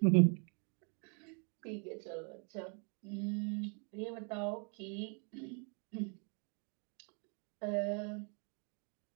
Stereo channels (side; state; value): left; quieter; 37.4 dB